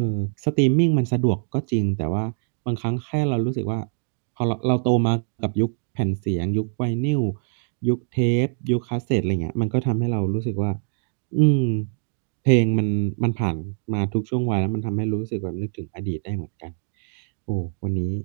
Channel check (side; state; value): left; silent; digital silence